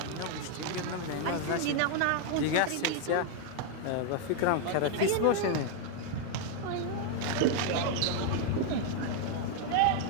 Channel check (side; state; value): both; different; correlation 0.00